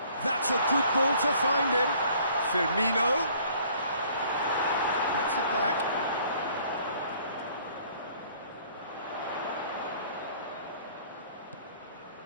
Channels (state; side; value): inverted; both; correlation -0.57